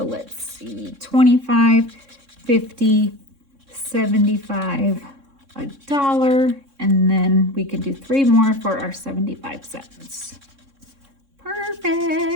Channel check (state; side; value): late; left; 3.6 ms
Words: let's see, 25, 50, 75, $1, and then we can do 3 more for our 75 cents.